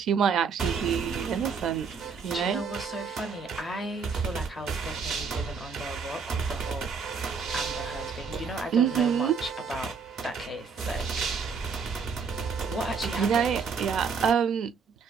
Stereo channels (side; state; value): left; quieter; 5.6 dB